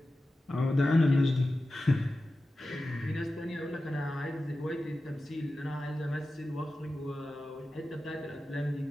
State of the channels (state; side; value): normal; both; correlation 0.94